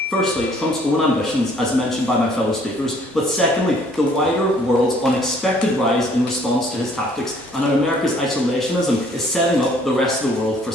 Firstly, Trump's own ambitions, as mentioned by my fellow speakers, but secondly, the wider world's unexpected rise in response to his tactics and how America's isolationism is setting up the rest of the world for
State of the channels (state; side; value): normal; both; correlation 0.60